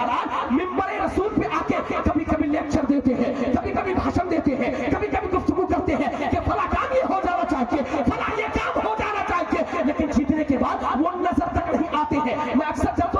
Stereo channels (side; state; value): both; identical; correlation 1.00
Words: मिंबर रसूल पे आके कभी कभी लेक्चर देते हैं, कभी कभी भाषण देते हैं, कभी कभी गुफ्तगू करते हैं कि फला काम ये हो जाना चाहिए, फला ये काम हो जाना चाहिए, लेकिन जीतने के बाद वो नजर तक नहीं आते हैं। मैं अक्सर जब